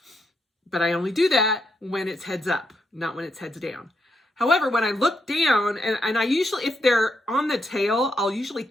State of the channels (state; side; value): normal; both; correlation 0.80